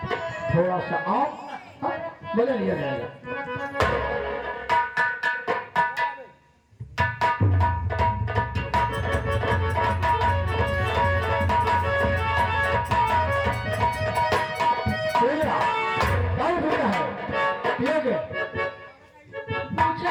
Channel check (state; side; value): identical; both; correlation 1.00